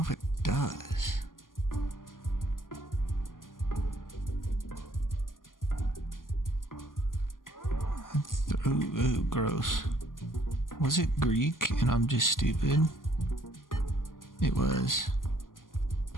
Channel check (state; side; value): late; right; 0.90 ms